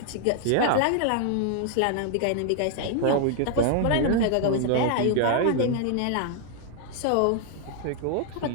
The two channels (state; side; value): different; both; correlation 0.00